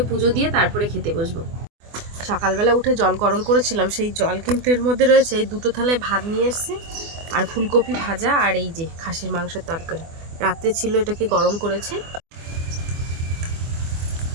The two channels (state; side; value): late; left; 24 ms